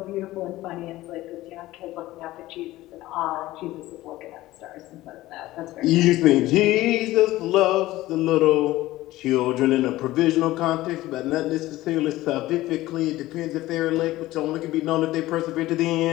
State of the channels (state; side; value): quieter; right; 16.9 dB